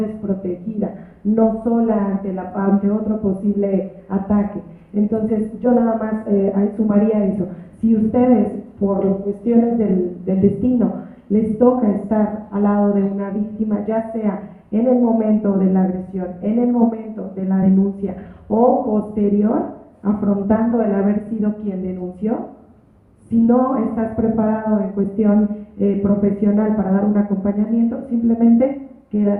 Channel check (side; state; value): both; identical; correlation 1.00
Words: no sola ante otro posible ataque. Entonces, yo nada más sumaría eso. Si ustedes, por cuestiones del destino, les toca estar al lado de una víctima, ya sea en el momento de la agresión, en el momento de la denuncia o posterior, afrontando el haber sido quien denunció, si no estás preparado en cuestión profesional para dar un acompañamiento, simplemente